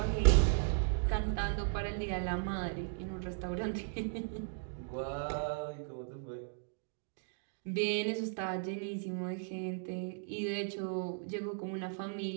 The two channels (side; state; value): left; silent; digital silence